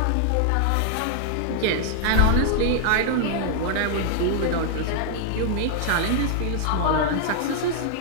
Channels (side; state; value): both; different; correlation -0.01